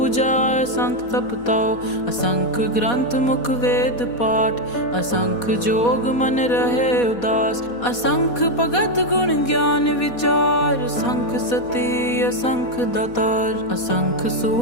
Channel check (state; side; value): late; right; 4.2 ms